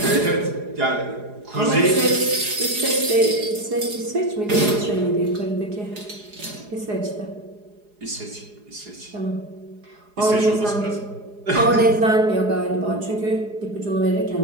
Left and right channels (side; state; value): left; late; 4.8 ms